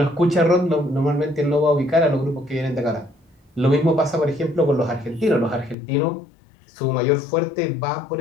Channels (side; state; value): right; drops out; at 5.8 s